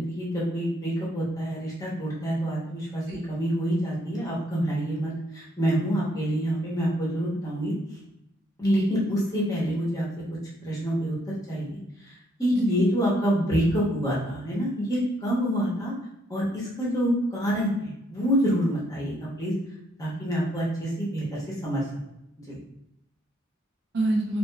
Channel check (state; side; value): normal; both; correlation 0.71